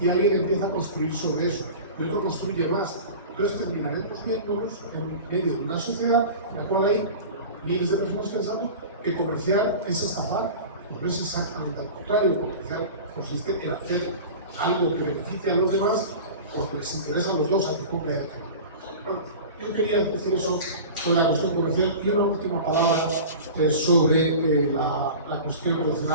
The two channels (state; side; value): inverted; both; correlation -0.35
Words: alguien empieza a construir sobre eso y otro construye más. Entonces terminaremos viéndonos en medio de una sociedad en la cual hay miles de personas pensando que comerciar es estafar. No es exactamente al contrario. Comerciar consiste en hacer algo que beneficie a los demás porque les interesa a los dos, a que compre y a que no. Bueno, yo quería decir eso sobre la cuestión comercial y una última palabra sobre la cuestión